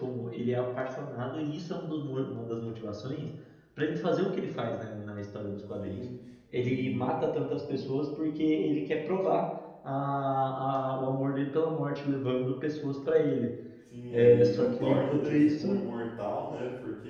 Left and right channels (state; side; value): identical; both; correlation 1.00